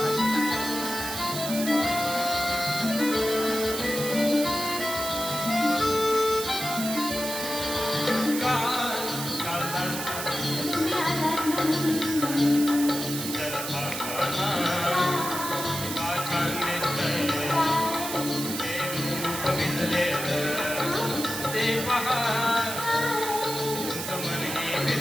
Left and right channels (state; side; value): noise; right; hiss, 6 dB below the sound